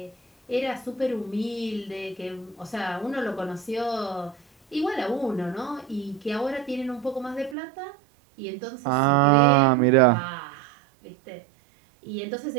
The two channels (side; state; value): left; drops out; at 7.6 s